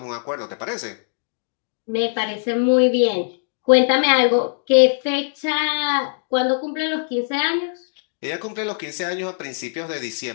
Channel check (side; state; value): right; silent; digital silence